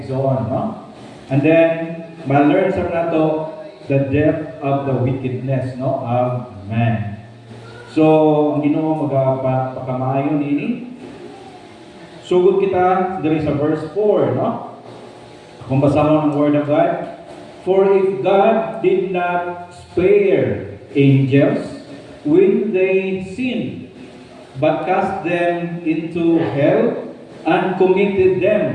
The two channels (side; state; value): both; identical; correlation 1.00